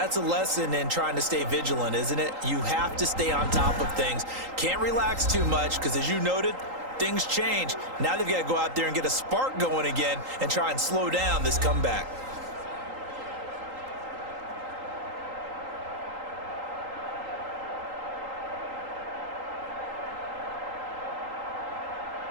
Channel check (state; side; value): late; left; 3.8 ms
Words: a lesson in trying to stay vigilant, isn't it? You have to stay on top of things. Can't relax too much because, as you noted, things change. Now they've got to go out there and get a spark going again and try and slow down this comeback.